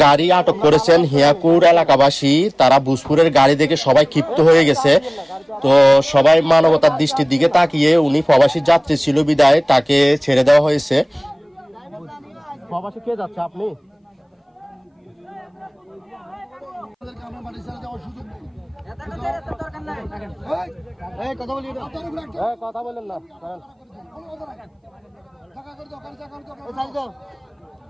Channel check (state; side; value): identical; both; correlation 1.00